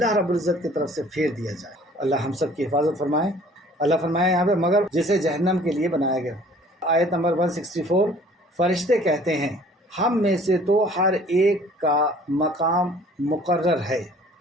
رب العزت کی طرف سے پھیر دیا جائے. اللہ ہم سب کی حفاظت فرمائے. اللہ فرمائے یہاں پہ مگر جسے جہنم کے لیے بنایا گیا. آیت نمبر 164، فرشتے کہتے ہیں ہم میں سے تو ہر ایک کا مقام مقرر ہے.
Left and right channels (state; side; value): normal; both; correlation 0.53